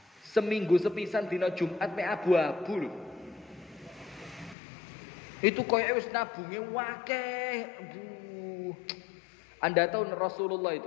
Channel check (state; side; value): drops out; right; at 4.5 s